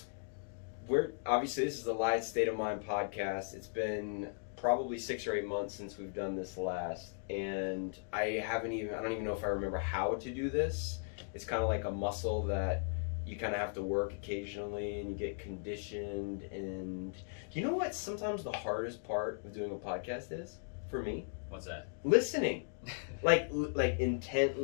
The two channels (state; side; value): silent; right; digital silence